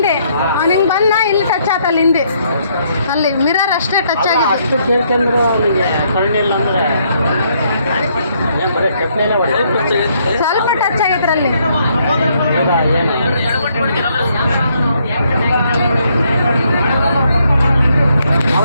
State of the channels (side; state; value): both; inverted; correlation -0.71